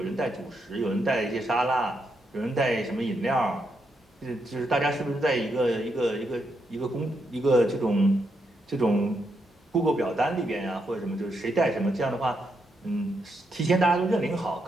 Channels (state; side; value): normal; both; correlation 0.80